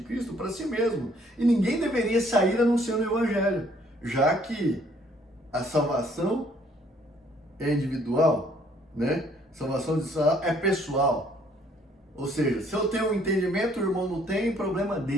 Cristo para si mesmo. E ninguém deveria sair anunciando o Evangelho, já que a salvação é individual, né? Salvação é pessoal. Ou seja, se eu tenho um entendimento, o irmão não tem, problema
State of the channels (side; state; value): both; normal; correlation 0.63